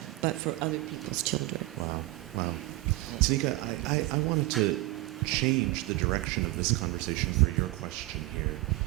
but for other people's children. Wow. Tanika, I wanted to change the direction of this conversation for your question here.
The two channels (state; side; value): quieter; left; 20.0 dB